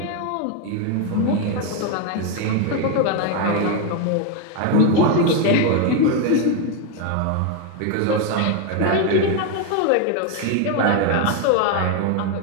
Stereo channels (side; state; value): both; different; correlation 0.01